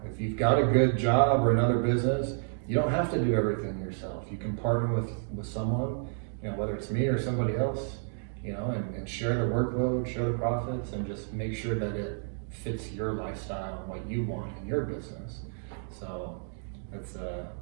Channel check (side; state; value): left; silent; digital silence